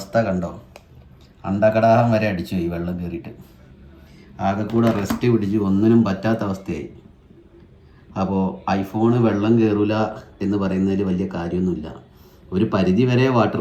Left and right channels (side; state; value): both; identical; correlation 1.00